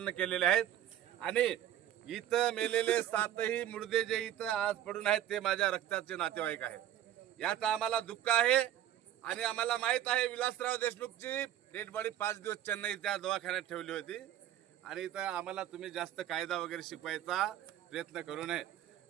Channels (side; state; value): left; quieter; 11.8 dB